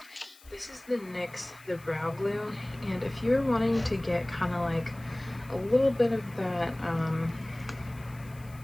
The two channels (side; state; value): left; noise; hiss, 24 dB below the sound